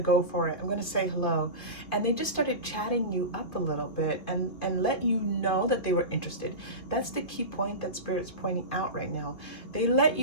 go for it. I'm going to say hello. And they just started chatting you up a little bit and let you know that they were interested. That's the key point that Spirit's pointing out right now. They let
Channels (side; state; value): right; late; 2.3 ms